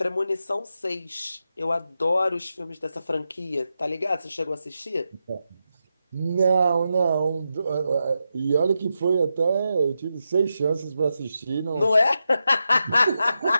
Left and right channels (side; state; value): both; inverted; correlation -0.88